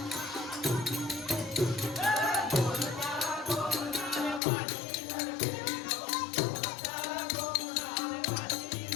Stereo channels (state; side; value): drops out; right; at 4.4 s